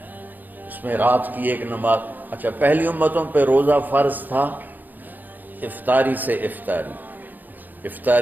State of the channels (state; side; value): late; left; 0.086 ms